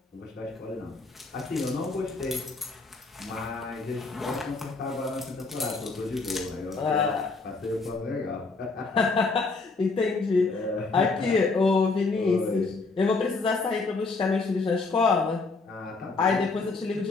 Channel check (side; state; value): right; quieter; 3.9 dB